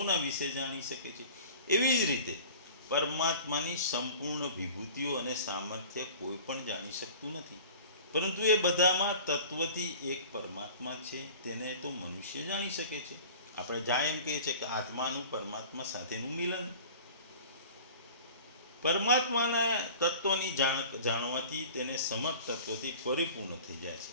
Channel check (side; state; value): both; inverted; correlation -0.42